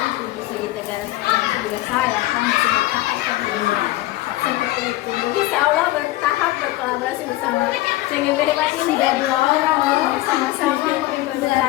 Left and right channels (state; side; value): quieter; right; 17.3 dB